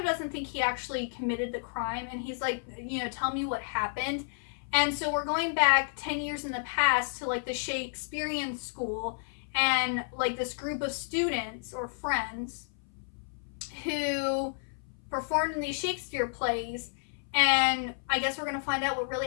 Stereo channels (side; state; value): right; silent; 57 dB below the other